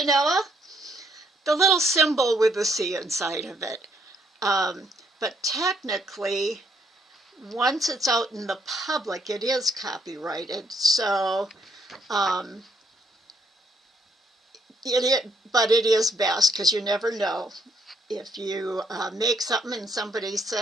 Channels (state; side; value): normal; both; correlation 0.70